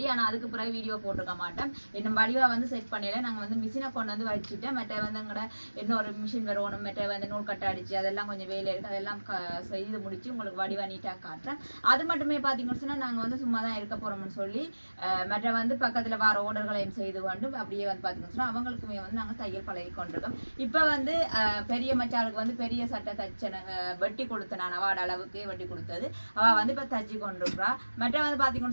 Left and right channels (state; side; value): inverted; both; correlation -1.00